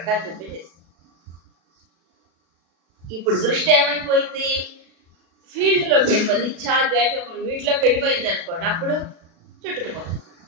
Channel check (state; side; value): late; left; 36 ms